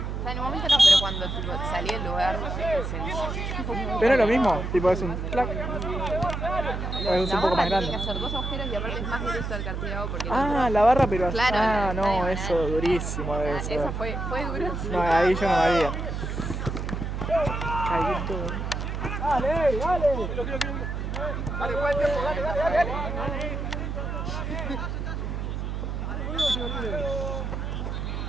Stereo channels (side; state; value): right; noise; hum, 4 dB below the sound